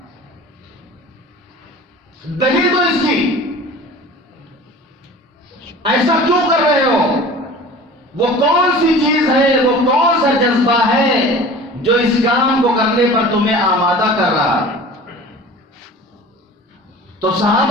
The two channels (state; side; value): normal; both; correlation 0.41